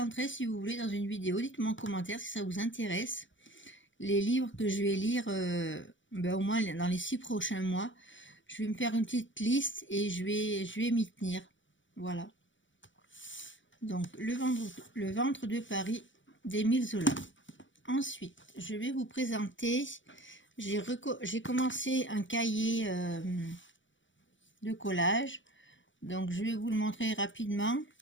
si vous voulez dans une vidéo. Dites-moi en commentaire si ça vous intéresse. Les livres que je vais lire au moins dans les 6 prochains mois. Je vais me faire une petite liste et je vais m'y tenir. Voilà. Donc le ventre de Paris d'Émile Zola. Ensuite, je vais vous présenter, j'ai commencé un cahier de collage. Donc je vais vous le montrer rapidement.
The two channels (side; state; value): right; late; 0.55 ms